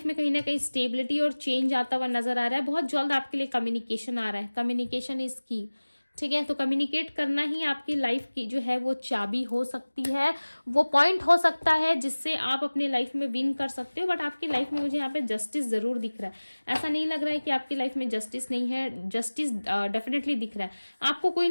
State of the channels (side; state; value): both; inverted; correlation -1.00